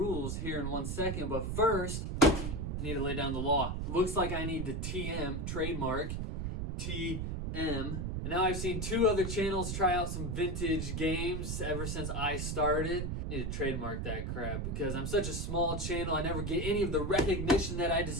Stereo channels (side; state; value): right; noise; rumble, 2 dB below the sound